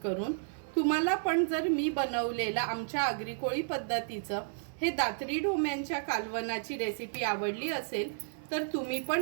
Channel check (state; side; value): silent; left; 56 dB below the other